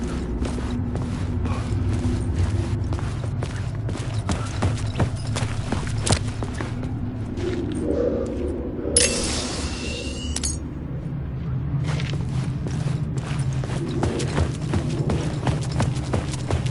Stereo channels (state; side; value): identical; both; correlation 1.00